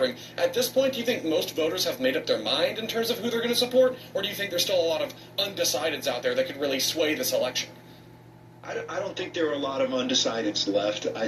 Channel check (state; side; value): identical; both; correlation 1.00